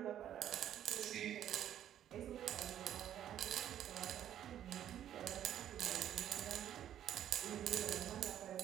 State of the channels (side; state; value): left; quieter; 10.8 dB